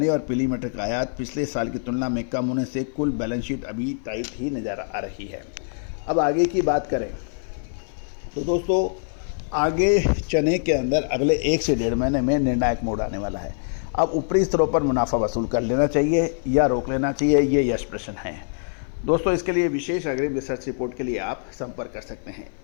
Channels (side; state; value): right; silent; 56 dB below the other